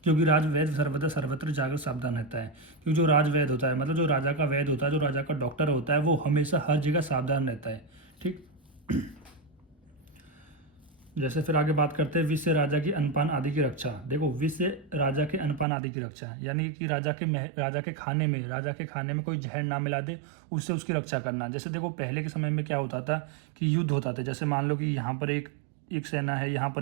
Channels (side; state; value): left; drops out; at 15.7 s